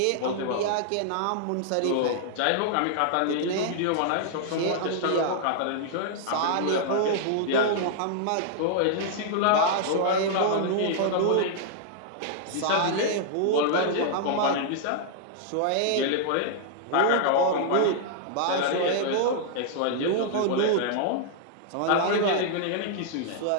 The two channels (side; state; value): both; different; correlation -0.01